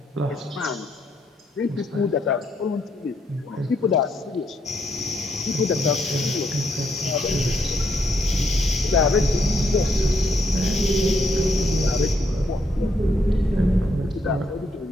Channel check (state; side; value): normal; both; correlation 0.74